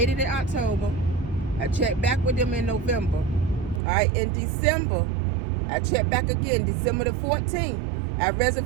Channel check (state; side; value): drops out; left; at 3.8 s